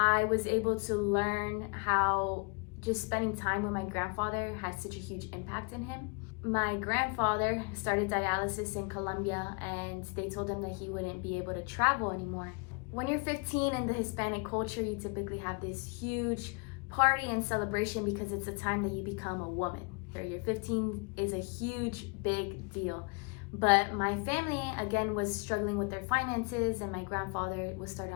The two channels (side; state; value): right; quieter; 33.1 dB